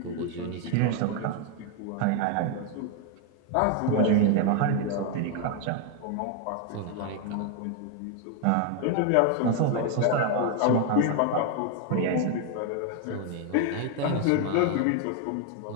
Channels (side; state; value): both; different; correlation 0.01